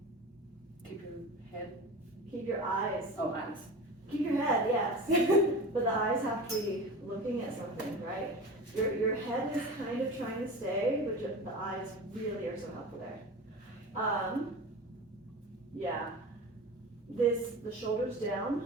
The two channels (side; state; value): both; normal; correlation 0.32